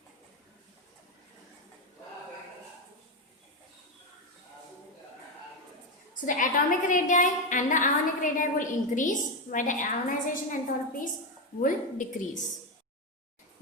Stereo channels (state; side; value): normal; both; correlation 0.09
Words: So the atomic radii and the ionic radii will increase, while the ionization enthalpies will decrease.